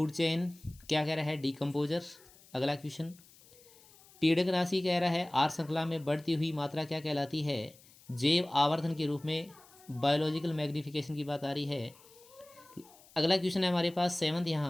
chain क्या कह रहा है? डिकम्पोजर। अगला क्वेश्चन पीड़क राशि कह रहा है आहार श्रृंखला में बढ़ती हुई मात्रा क्या कहलाती है? जैव आवर्धन के रूप में बायोलॉजिकल मैग्निफिकेशन की बात आ रही है। अगला क्वेश्चन है हमारे पास सेवंथ,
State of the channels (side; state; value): left; noise; hiss, 25 dB below the sound